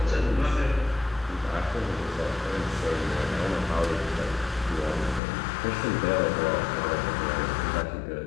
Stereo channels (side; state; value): right; drops out; at 5.2 s